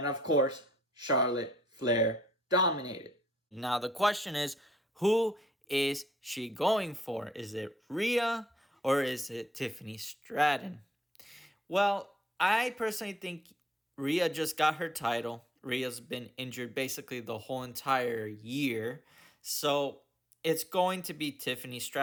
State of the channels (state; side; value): normal; both; correlation 0.71